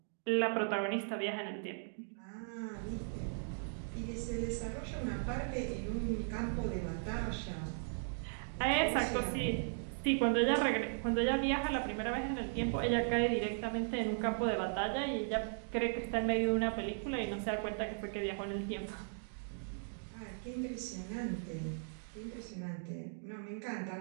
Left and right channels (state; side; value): silent; left; digital silence